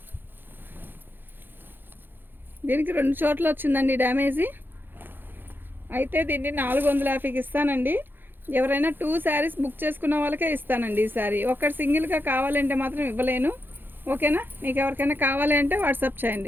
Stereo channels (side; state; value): left; late; 0.097 ms